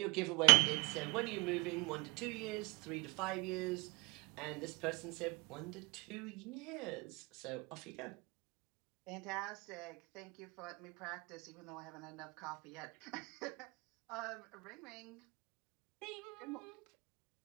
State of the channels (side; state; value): left; quieter; 28.8 dB